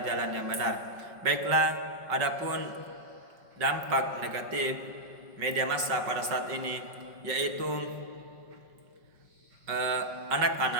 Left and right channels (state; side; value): late; left; 5.3 ms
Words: jalan yang benar. Baiklah, adapun dampak negatif media massa pada saat ini, yaitu